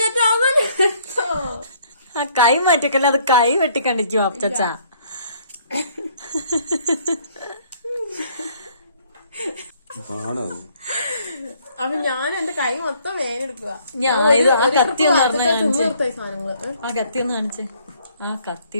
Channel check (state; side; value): inverted; both; correlation -0.63